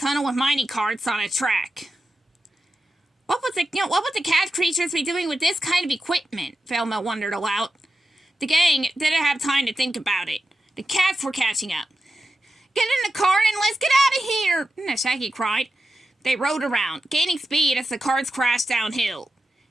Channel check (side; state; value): both; normal; correlation 0.91